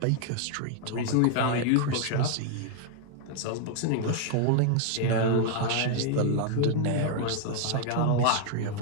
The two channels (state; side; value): different; both; correlation 0.00